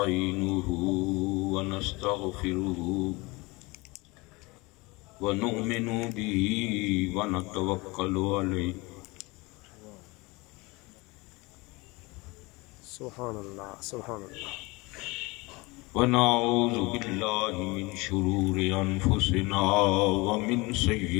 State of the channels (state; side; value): quieter; right; 24.5 dB